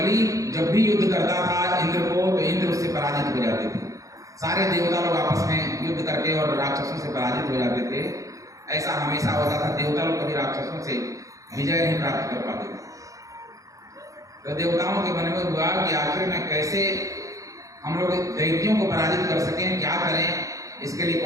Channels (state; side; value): late; left; 0.16 ms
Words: जब भी युद्ध करता था इंद्र को, तो इंद्र उससे पराजित हो जाते थे। सारे देवता लोग आपस में युद्ध करके और राक्षसों से पराजित हो जाते थे। ऐसा हमेशा होता था, देवता लोग कभी राक्षसों से विजय नहीं प्राप्त कर पाते थे। तो देवताओं के मन में हुआ कि आखिर में कैसे हम लोग दैत्यों को पराजित कर सकें, क्या करें, इसके लिए